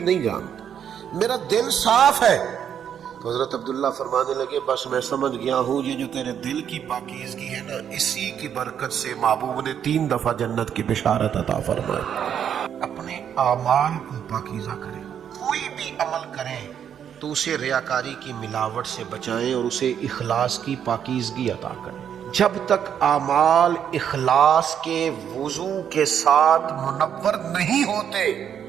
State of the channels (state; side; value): quieter; left; 8.7 dB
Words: نہیں جانتا، میرا دل صاف ہے۔ تو حضرت عبداللہ فرمانے لگے بس میں سمجھ گیا ہوں یہ جو تیرے دل کی پاکیزگی ہے نا، اسی کی برکت سے محبوب نے 3 دفعہ جنت کی بشارت عطا فرمائی۔ اپنے اعمال کو پاکیزہ کریں، کوئی بھی عمل کریں تو اسے ریاکاری کی ملاوٹ سے بچائیں اور اسے اخلاص کی پاکیزگی عطا کریں۔ جب تک اعمال اخلاص کے وضو کے ساتھ منور نہیں ہوتے